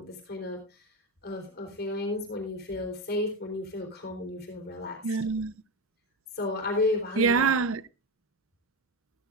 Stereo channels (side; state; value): both; normal; correlation 0.15